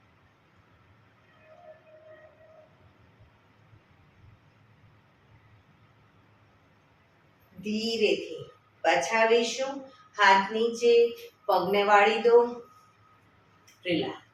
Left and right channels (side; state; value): both; identical; correlation 1.00